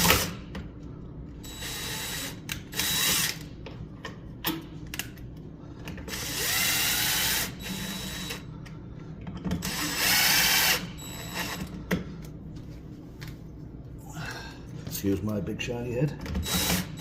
Excuse my big shiny head.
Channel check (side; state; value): both; identical; correlation 1.00